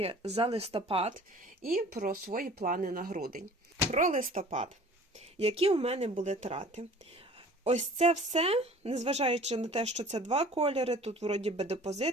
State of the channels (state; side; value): normal; both; correlation 0.47